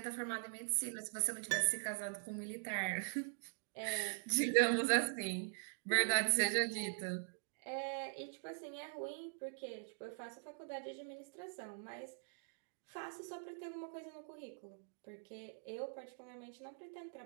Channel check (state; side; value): silent; left; digital silence